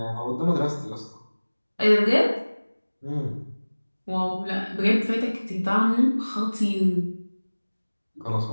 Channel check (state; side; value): inverted; both; correlation -1.00